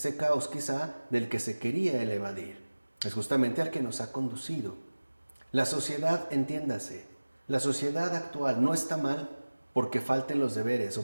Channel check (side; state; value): both; inverted; correlation -1.00